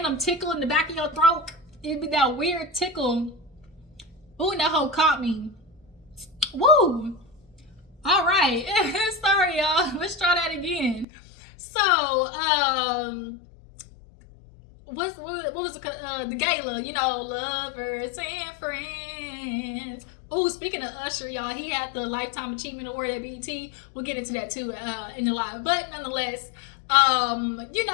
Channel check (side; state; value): right; drops out; at 11.1 s